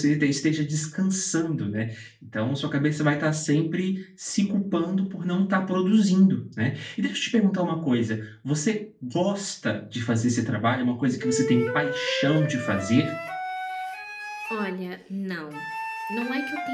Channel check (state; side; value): identical; both; correlation 1.00